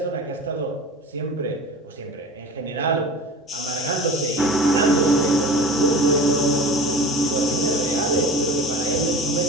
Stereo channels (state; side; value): normal; both; correlation 0.37